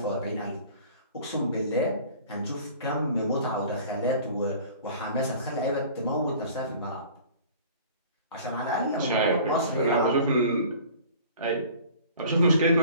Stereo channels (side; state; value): both; inverted; correlation -0.46